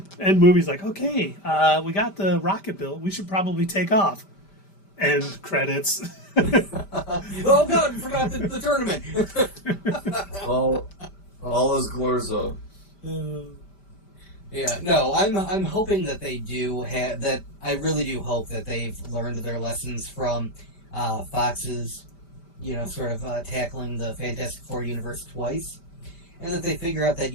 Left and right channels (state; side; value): late; right; 5.1 ms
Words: movie's okay, we got the rocket built. We should probably take off. End credits. Oh God, we forgot the tournament. all is Glorzo. Yeah, no, I'm hoping that they do have that. I really do hope that they've learned their lessons from Fox's, sort of tackling the Fantastic Four universe twice, and that they figure out that